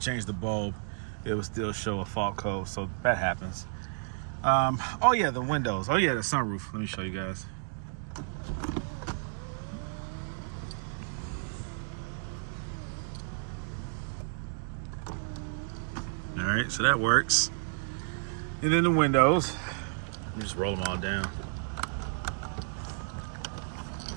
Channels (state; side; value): silent; left; digital silence